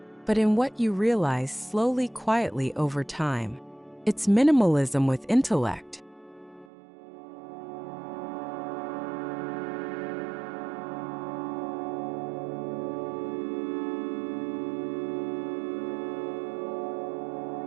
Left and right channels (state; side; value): drops out; left; at 6.7 s